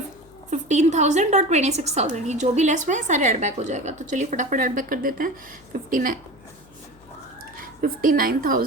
और 26,000, ये जो भी लेस हुए हैं सारे ऐड बैक हो जाएगा। तो चलिए फटाफट ऐड बैक कर देते हैं।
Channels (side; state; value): left; noise; hum, 27 dB below the sound